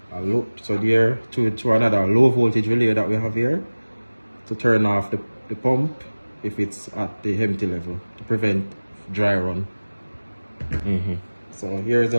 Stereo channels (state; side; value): inverted; both; correlation -1.00